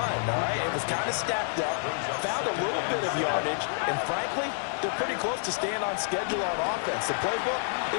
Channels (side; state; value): right; silent; digital silence